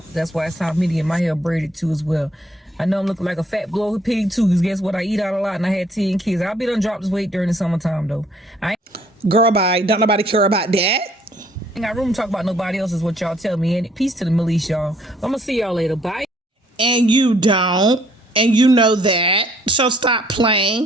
That's why it's time for me to get my hair braided too as well. I know I'm looking like a fat bloated pig too, because guess what? I eat out a lot and I had 10 kids. I'll be done drop this weight during the summertime though. Girl, bye. Don't nobody care about that. Ain't got room to talk about nobody else is what y'all tell me. And peace to the Melise, y'all. I'm gonna see y'all later. Bye. And you don't. And you know that. So stop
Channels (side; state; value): both; normal; correlation 0.63